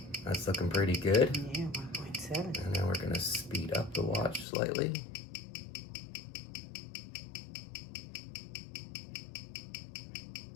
that's looking pretty good. Yeah, 1.7. And now we're going to speed up the watch slightly.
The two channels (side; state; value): right; drops out; at 4.5 s